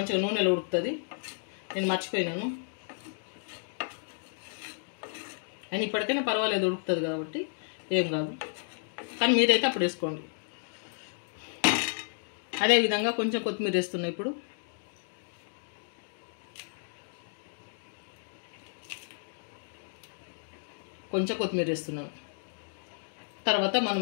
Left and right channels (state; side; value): silent; right; digital silence